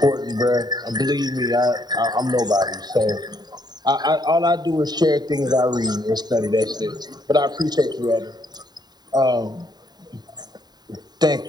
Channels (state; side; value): late; left; 0.20 ms